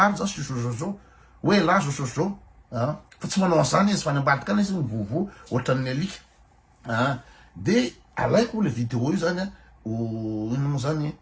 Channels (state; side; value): identical; both; correlation 1.00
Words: zao sosozao hoe la sosozao fa tsy manao an'izany izy fa ny ambadika any izy mivovo ohatran'ny alika de alaiko le vidéo io zany ino moa zany